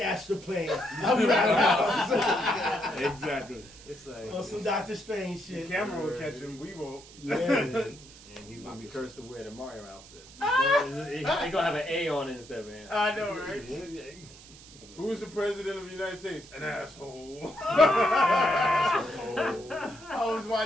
astral plane. I'm Roundhouse. Exactly. It's like On some Doctor Strange The shit. camera will catch him. We won't. Yeah. and he's gonna be cursed to wear the Mario outfit. He's gonna have an A on it instead of an. I know, right? Who's the president of the United States? An asshole. I was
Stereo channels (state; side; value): noise; right; hiss, 20 dB below the sound